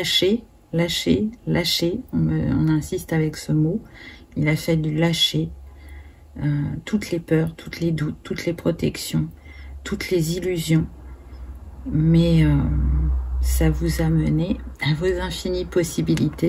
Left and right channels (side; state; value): both; identical; correlation 1.00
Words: On insiste avec ce mot. Il a fallu lâcher toutes les peurs, tous les doutes, toutes les protections, toutes les illusions. Mais ça vous a mené à vos infinies